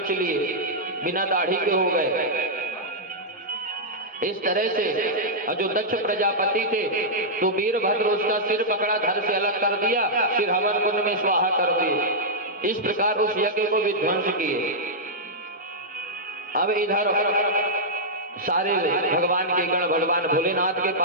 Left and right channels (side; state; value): both; normal; correlation -0.09